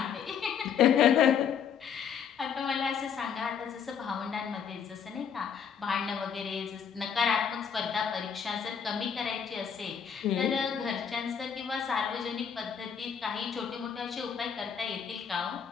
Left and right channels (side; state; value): right; quieter; 7.4 dB